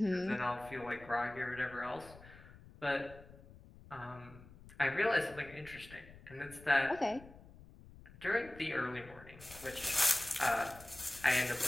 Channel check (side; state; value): left; noise; rumble, 20 dB below the sound